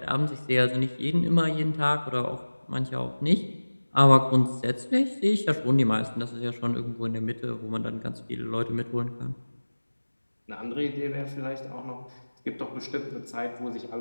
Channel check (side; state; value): both; inverted; correlation -1.00